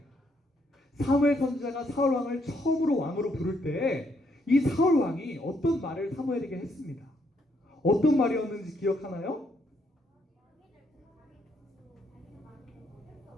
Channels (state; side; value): normal; both; correlation 0.73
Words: 사무엘 선지자가 사울 왕을 처음으로 왕으로 부를 때 이 사울 왕이 어떤 말을 사무엘에게 했습니다. 어떤 말이었는지 기억하나요?